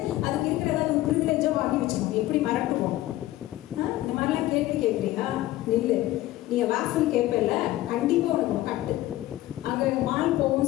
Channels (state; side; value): quieter; right; 16.0 dB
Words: அதுக்கு இருக்கிற ஏதாவது ஒரு ப்ரிவிலேஜாக வாங்கி வச்சுக்கோங்க. எப்படி மறட்டுவோம்? இந்த மாதிரிலாம் கேள்வி கேட்குறீங்களா? நில்லு. நீங்கள் வாசல் கேட்பல, கண்டிப்பாக உனக்கு கட்டு. அங்கே மால்